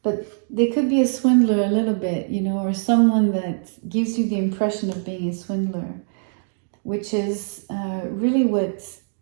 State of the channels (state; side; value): silent; left; digital silence